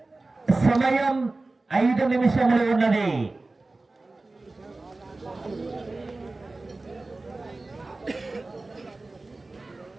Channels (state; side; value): quieter; left; 3.2 dB